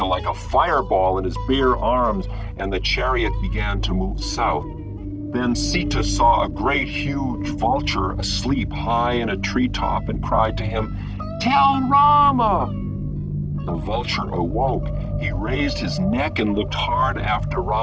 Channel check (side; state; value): both; identical; correlation 1.00